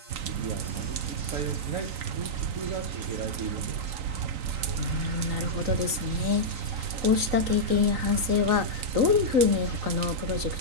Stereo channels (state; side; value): late; left; 3.9 ms